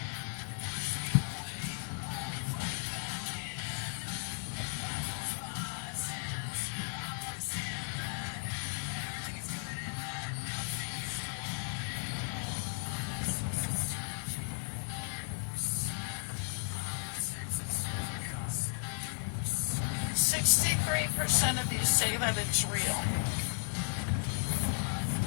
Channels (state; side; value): silent; right; digital silence